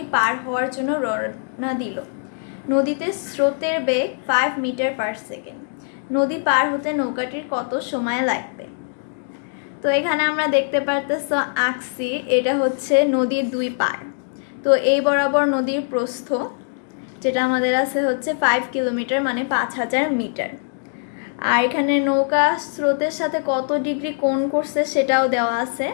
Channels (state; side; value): silent; right; 64 dB below the other